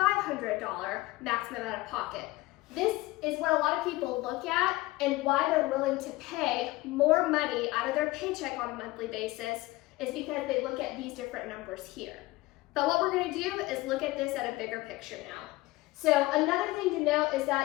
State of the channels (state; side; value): quieter; right; 19.7 dB